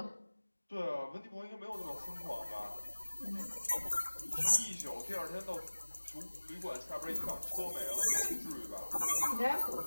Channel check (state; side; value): inverted; both; correlation -1.00